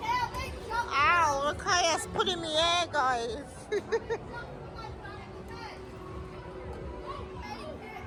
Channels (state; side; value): identical; both; correlation 1.00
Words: Ow, look how it's put in the air, guys.